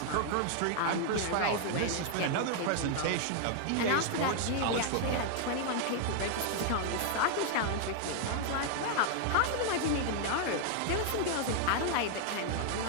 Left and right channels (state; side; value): different; both; correlation 0.00